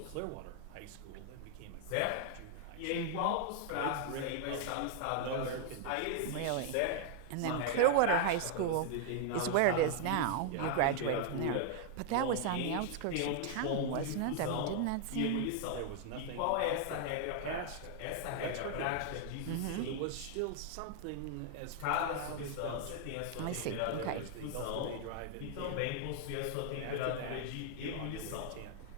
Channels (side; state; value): both; different; correlation 0.00